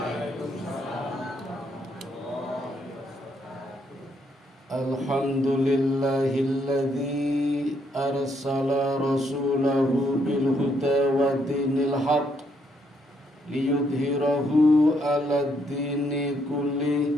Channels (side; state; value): both; normal; correlation 0.73